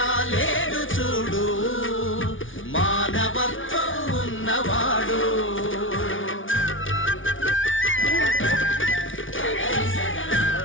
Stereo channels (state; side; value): late; right; 0.57 ms